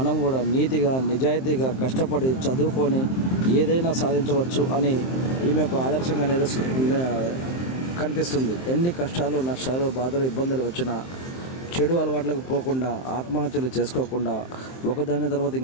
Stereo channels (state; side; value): late; right; 23 ms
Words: కూడా నీతిగా నిజాయితీగా కష్టపడి చదువుకొని ఏదైనా సాధించవచ్చు అని ఈమె ఒక ఆదర్శంగా కనిపిస్తుంది. ఎన్ని కష్టాలు నష్టాలు బాధలు ఇబ్బందులు వచ్చినా చెడు అలవాట్లకు పోకుండా, ఆత్మహత్యలు చేసుకోకుండా, ఒకదాని తర్వాత